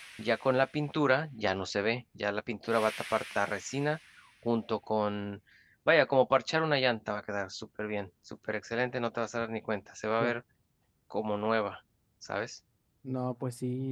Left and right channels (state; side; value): identical; both; correlation 1.00